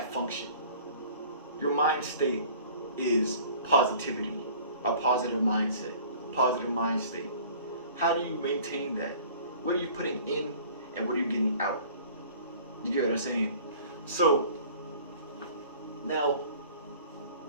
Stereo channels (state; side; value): inverted; both; correlation -0.48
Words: function. Your mind state is positivity, a positive mindset, positive mind state. How do you maintain that? What are you putting in and what are you getting out? You get what I'm saying? So now,